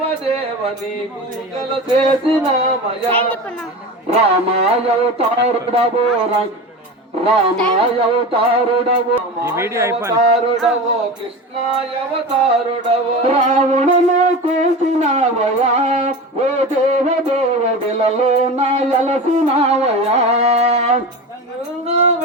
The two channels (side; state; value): both; normal; correlation 0.28